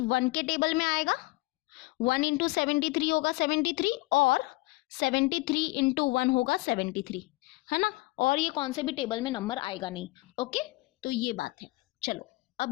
1 के टेबल में आएगा, 1 इंटू 73 होगा 73, और 73 इंटू 1 होगा 73, है ना, और ये कौन से भी टेबल में नंबर आएगा नहीं। ओके, तो ये बात है। चलो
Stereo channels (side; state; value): right; quieter; 22.2 dB